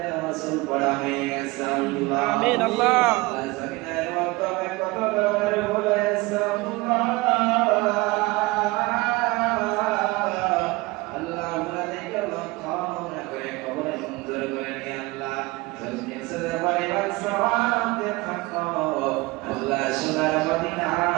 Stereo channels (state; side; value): quieter; left; 22.4 dB